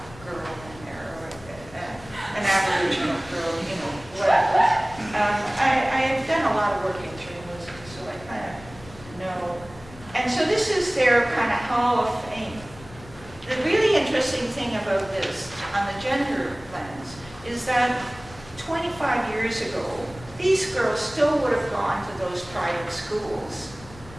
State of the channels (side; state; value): left; noise; rumble, 19 dB below the sound